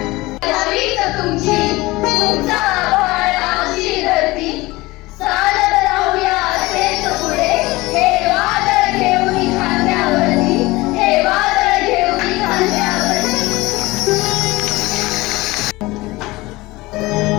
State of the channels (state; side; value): quieter; right; 20.8 dB